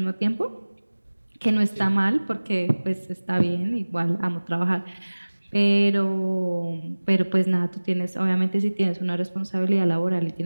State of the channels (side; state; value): both; inverted; correlation -1.00